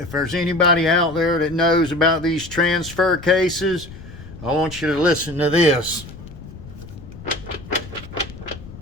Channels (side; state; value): left; noise; rumble, 15 dB below the sound